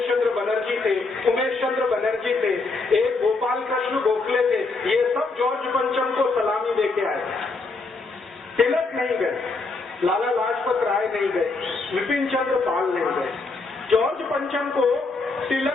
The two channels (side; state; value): right; quieter; 3.7 dB